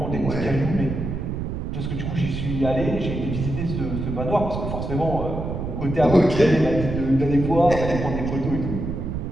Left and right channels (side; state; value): right; noise; rumble, 4 dB below the sound